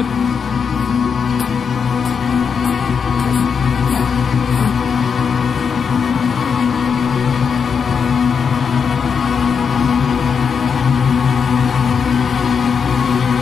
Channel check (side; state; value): right; quieter; 6.3 dB